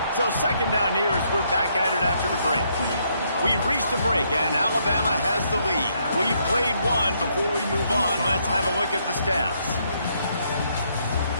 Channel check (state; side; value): inverted; both; correlation -0.73